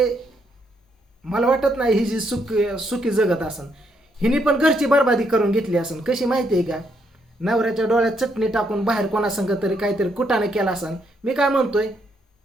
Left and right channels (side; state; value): both; normal; correlation 0.75